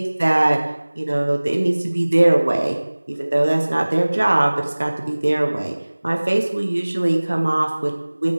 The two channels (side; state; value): both; inverted; correlation -1.00